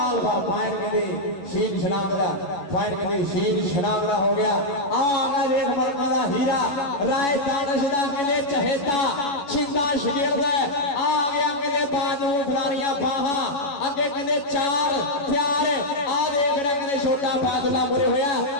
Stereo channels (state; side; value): late; right; 11 ms